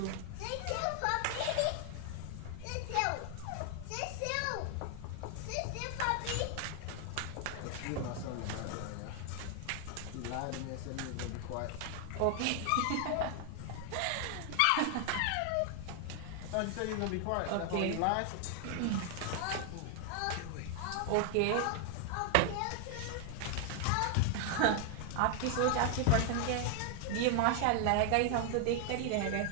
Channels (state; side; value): different; both; correlation 0.00